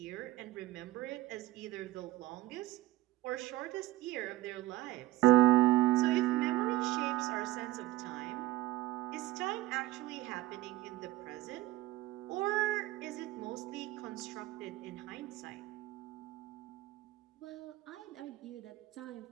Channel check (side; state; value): left; quieter; 16.4 dB